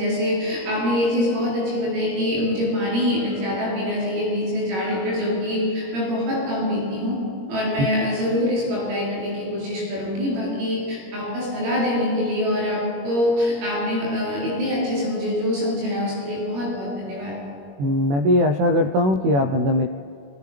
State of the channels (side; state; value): left; late; 21 ms